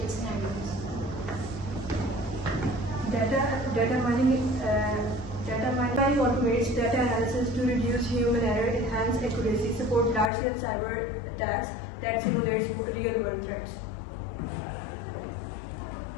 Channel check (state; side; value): drops out; right; at 10.3 s